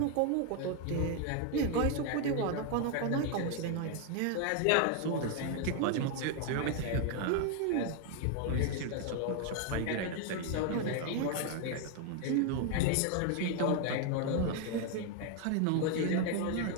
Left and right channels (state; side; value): different; both; correlation 0.01